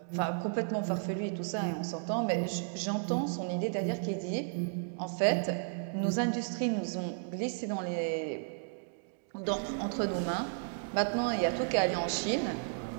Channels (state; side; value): silent; left; digital silence